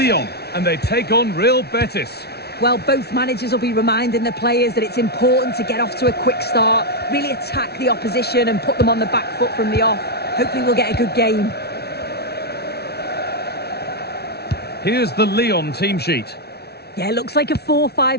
and they take on Real Betis. Well, both managers will be reminding the players that it's important to get off to a quick start, really attack the opposition and put them on the back foot from the off. Hopefully we'll get a good game. Here's the Lyon team sheet. Yeah, it looks like a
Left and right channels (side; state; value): right; late; 0.47 ms